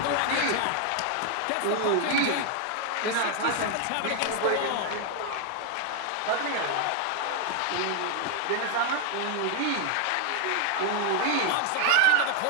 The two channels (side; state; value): both; different; correlation 0.00